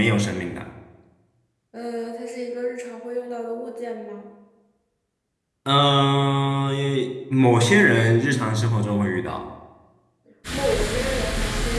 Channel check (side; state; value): both; identical; correlation 1.00